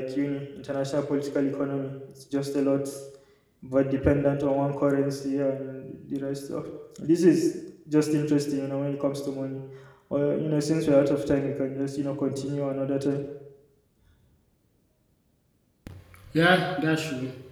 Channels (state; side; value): identical; both; correlation 1.00